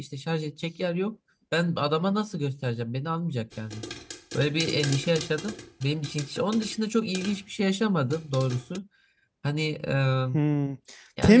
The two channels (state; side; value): identical; both; correlation 1.00